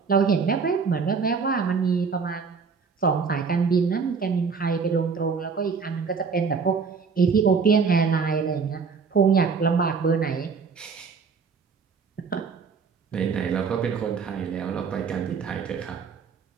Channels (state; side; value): quieter; left; 5.4 dB